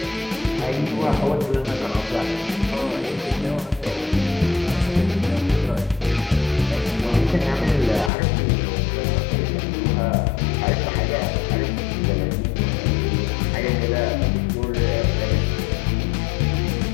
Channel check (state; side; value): drops out; right; at 8.1 s